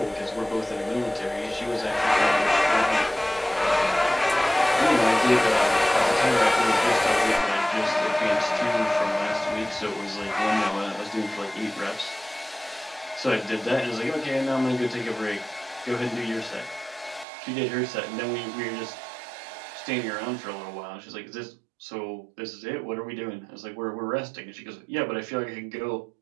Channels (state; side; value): drops out; left; at 17.2 s